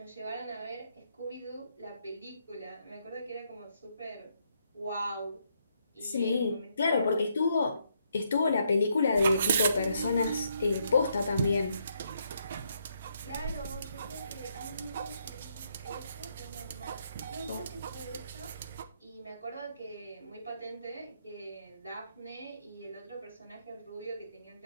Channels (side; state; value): both; inverted; correlation -0.75